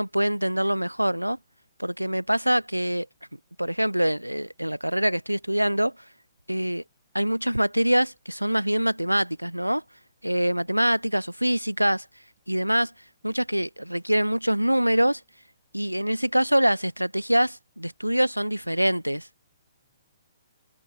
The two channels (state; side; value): inverted; both; correlation -1.00